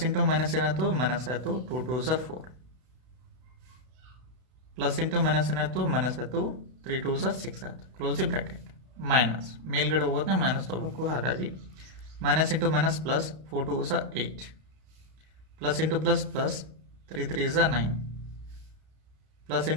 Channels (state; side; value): late; left; 32 ms